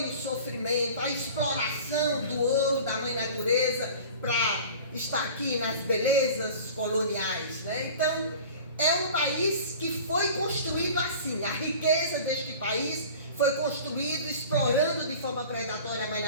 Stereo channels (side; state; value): both; inverted; correlation -0.41